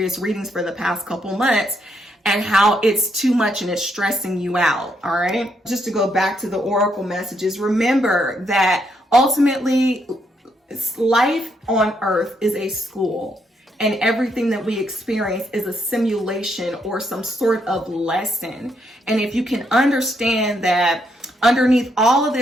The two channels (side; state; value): both; normal; correlation 0.76